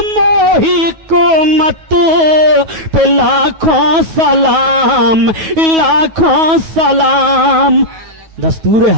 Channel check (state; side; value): late; left; 9.3 ms